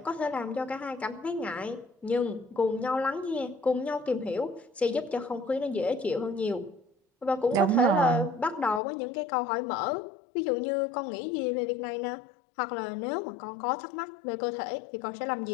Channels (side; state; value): right; drops out; at 8.8 s